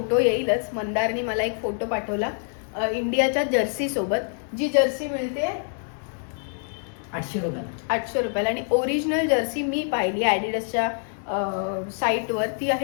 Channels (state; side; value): silent; right; 61 dB below the other